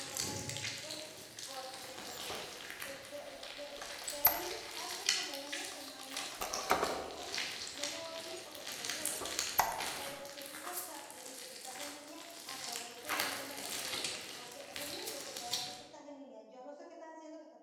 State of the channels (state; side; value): identical; both; correlation 1.00